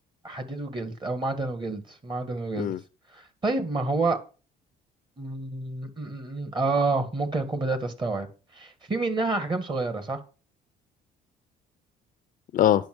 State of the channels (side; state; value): both; normal; correlation 0.54